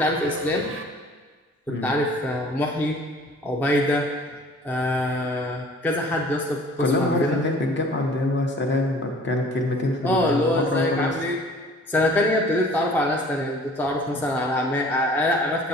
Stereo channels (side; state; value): both; normal; correlation 0.50